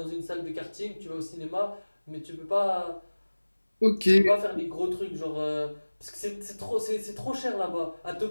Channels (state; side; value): inverted; both; correlation -1.00